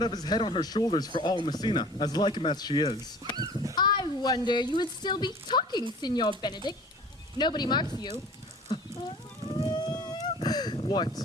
have his head on her shoulders for all Messina, as like him as she is. I wonder you would still be talking, Signor Benedict. Nobody marks you. What?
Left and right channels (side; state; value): both; normal; correlation 0.45